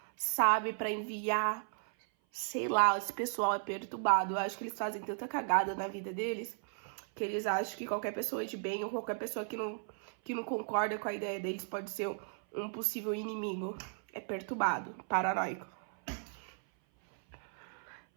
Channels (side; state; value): left; silent; 54 dB below the other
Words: sabe, pra enviar. Sei lá, esse pessoal é perturbado. Eu acho que eles fazem tanta cagada na vida deles que eles acham que qualquer pessoa de bem ou qualquer pessoa que não concorda com a ideia deles pode ser um possível inimigo. É perturbado, paranoico.